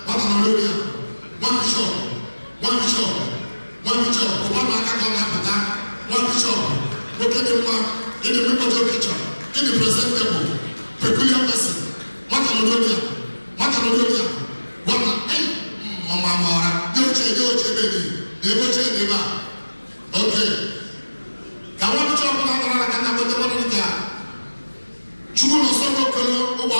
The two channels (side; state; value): both; inverted; correlation -1.00